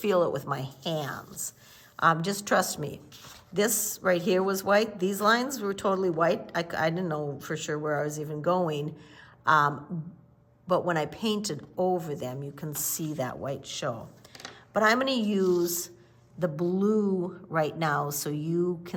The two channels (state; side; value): identical; both; correlation 1.00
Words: it with my hands. Just trust me. This right here was white. These lines were totally white. I didn't know for sure where I was even going. But when I painted over them, you can see that white show. But I'm gonna use the blue right now so you